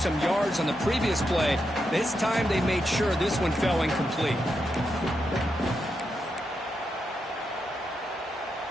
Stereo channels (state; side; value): normal; both; correlation 0.84